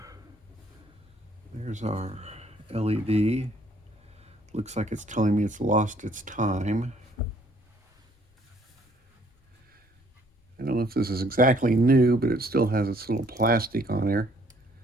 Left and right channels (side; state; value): both; normal; correlation 0.63